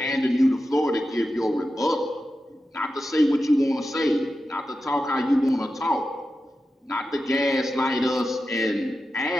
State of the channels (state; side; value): normal; both; correlation 0.91